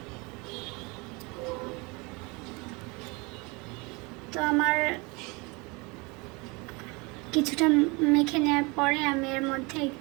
তো আমার কিছুটা মেখে নেওয়ার পরে আমি এর মধ্যে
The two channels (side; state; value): left; quieter; 27.4 dB